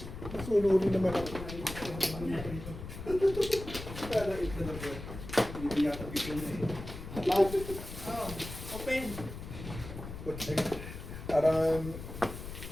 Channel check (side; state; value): left; noise; rumble, 10 dB below the sound